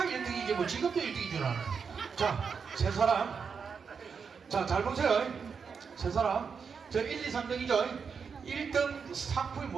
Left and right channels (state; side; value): quieter; left; 5.9 dB